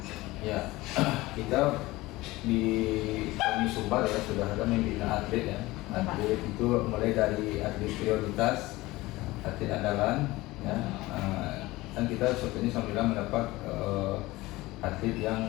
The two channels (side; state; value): right; quieter; 19.6 dB